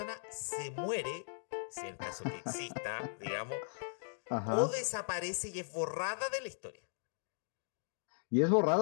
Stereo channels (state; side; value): silent; right; digital silence